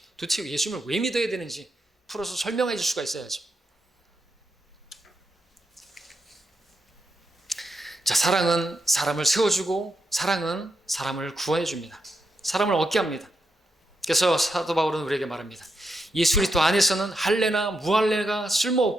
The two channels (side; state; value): both; normal; correlation 0.84